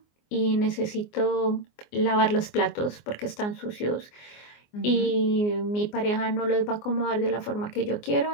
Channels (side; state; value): right; late; 24 ms